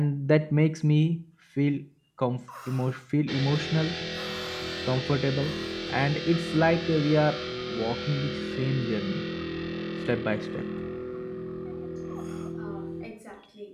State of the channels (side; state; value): both; identical; correlation 1.00